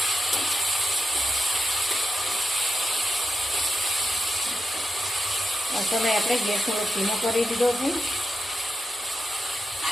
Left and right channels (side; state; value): both; normal; correlation 0.88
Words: સમય આપણે ગેસ થોડો ધીમો કરી દીધો છે।